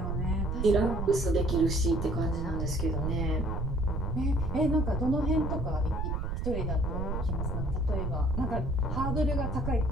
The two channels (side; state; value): right; noise; rumble, 2 dB below the sound